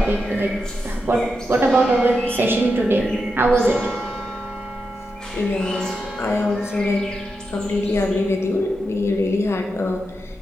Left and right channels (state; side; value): normal; both; correlation 0.87